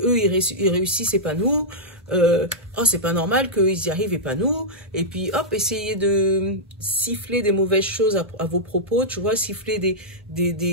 ils réussissent et pas nous. Oh, c'est pas normal qu'ils y arrivent et pas nous. Et puis, hop, essayez de siffler des mauvaises choses à vos propos, tu vois, siffler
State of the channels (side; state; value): both; normal; correlation -0.08